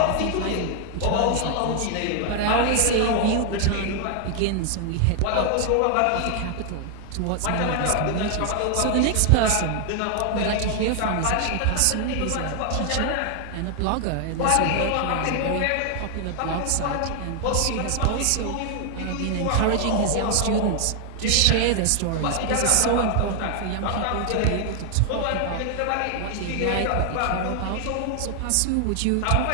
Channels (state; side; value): different; both; correlation 0.00